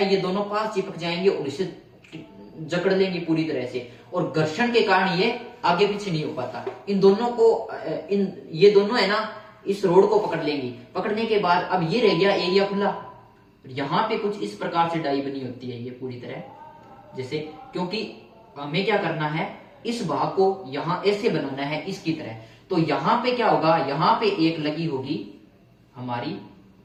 दोनों पास चिपक जाएंगे और इसे जकड़ लेंगे पूरी तरह से, और घर्षण के कारण ये आगे पीछे नहीं हो पाता। इन दोनों को ये दोनों है ना, इस रोड को पकड़ लेंगी। पकड़ने के बाद अब ये रह गया एरिया खुला। यहां पे कुछ इस प्रकार से डाई बनी होती है, ये पूरी तरह जैसे, क्योंकि हमें क्या करना है, इस भाग को यहां ऐसे बनाना है इसकी तरह। तो यहां पे क्या होगा, यहां पे एक लगी होगी हमारी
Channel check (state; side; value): identical; both; correlation 1.00